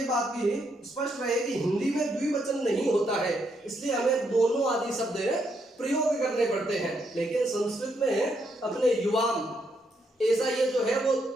बात भी स्पष्ट रहे कि हिंदी में द्विवचन नहीं होता है, इसलिए हमें दोनों आदि शब्द प्रयोग करने पड़ते हैं। लेकिन संस्कृत में अपने युवाम ऐसा ये जो है वो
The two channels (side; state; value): both; normal; correlation 0.76